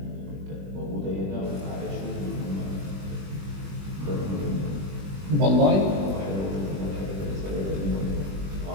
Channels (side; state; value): left; late; 21 ms